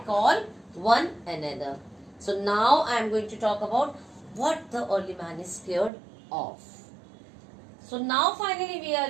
one another. So now I am going to talk about what the early man is scared of. So now finally we are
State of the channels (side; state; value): left; drops out; at 5.9 s